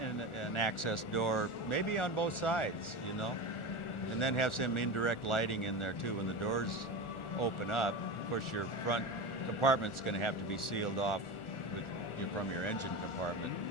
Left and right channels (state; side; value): late; right; 1.4 ms